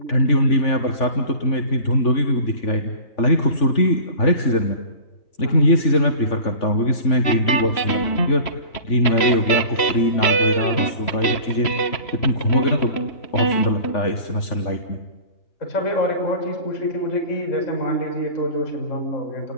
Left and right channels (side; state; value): right; late; 3.0 ms